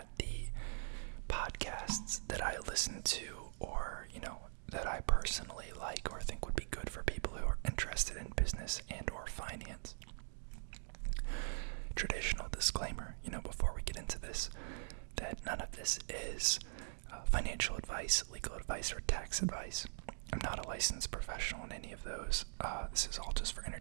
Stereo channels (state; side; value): silent; left; digital silence